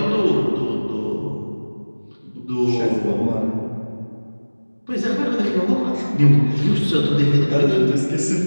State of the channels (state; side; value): inverted; both; correlation -1.00